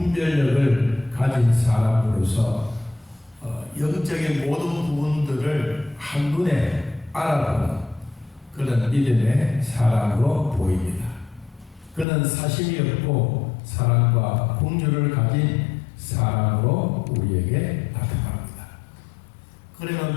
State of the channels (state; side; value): drops out; right; at 12.1 s